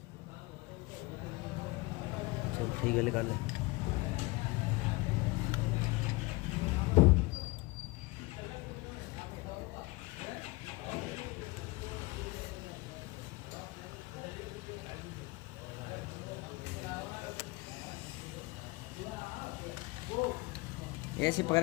चल ठीक है निकाल ले। ऐसे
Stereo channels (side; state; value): right; quieter; 23.4 dB